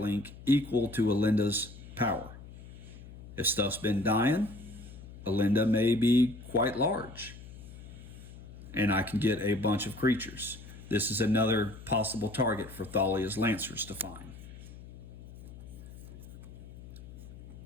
equal to Alinda's power. If stuff's been dying, Alinda may be quite large, and I can get a bunch of creatures. This is another possible target for Thalia's Lancers to find.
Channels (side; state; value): left; noise; hum, 16 dB below the sound